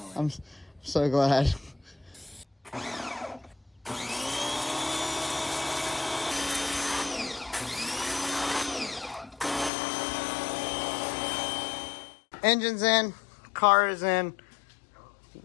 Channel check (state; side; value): drops out; right; at 9.7 s